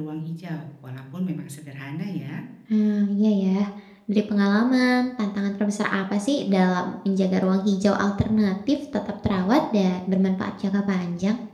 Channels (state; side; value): identical; both; correlation 1.00